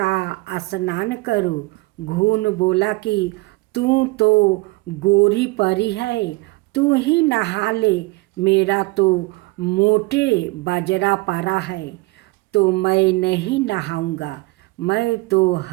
स्नान करो। घून बोला कि तू तो गोरी परी है, तू ही नहा ले, मेरा तो मोटे बाजरा पड़ा है तो मैं नहीं नहाऊंगा। मैं तो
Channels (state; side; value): quieter; left; 23.7 dB